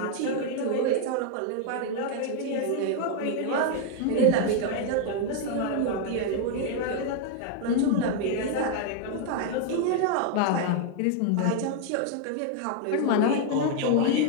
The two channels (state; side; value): different; both; correlation 0.00